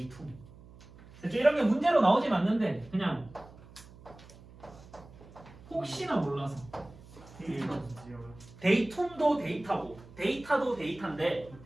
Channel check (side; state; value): right; noise; hum, 21 dB below the sound